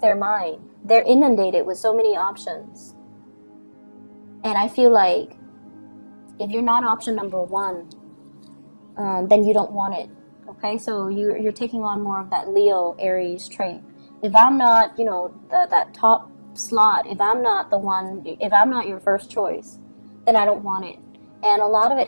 mind, they're inundated with so many options. And I feel like if you're not option number one, then you don't want it. Okay, so you're taking on more of that Leo Aries trait. If I'm not, that top slot, if I'm not your first choice, then I don't want it. And a lot of it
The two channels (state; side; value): inverted; both; correlation -1.00